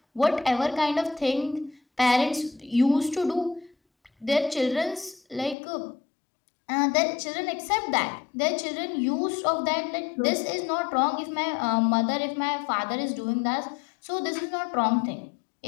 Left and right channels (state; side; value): drops out; right; at 5.6 s